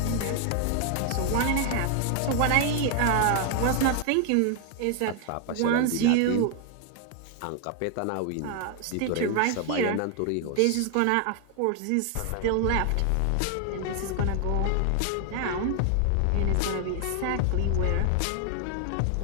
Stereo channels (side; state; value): both; different; correlation 0.00